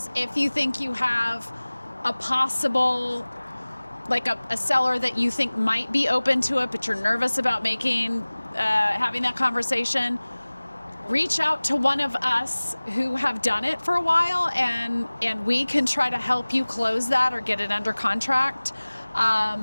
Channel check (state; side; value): inverted; both; correlation -1.00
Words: if you think you have a possible like a seller that you think might be open to it, but you're nervous about having that conversation, reach out to one of us who have done it for a while, and we can try to help you close that or get it under contract.